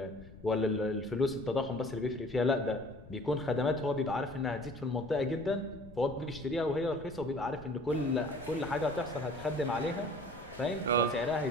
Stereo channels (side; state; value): left; noise; rumble, 19 dB below the sound